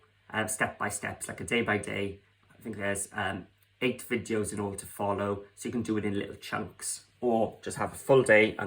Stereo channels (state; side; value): identical; both; correlation 1.00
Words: step by step, like a day by day. I think there's 8 videos in order to follow, so you can do it in little chunks, or just have a full day